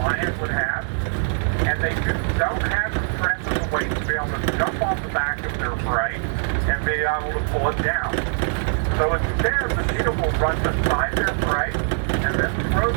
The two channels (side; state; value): left; silent; digital silence